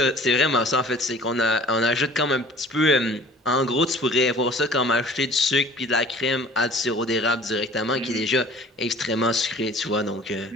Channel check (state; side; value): normal; both; correlation 0.48